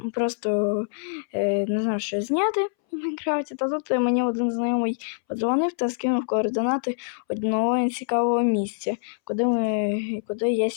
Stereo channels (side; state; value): right; silent; 62 dB below the other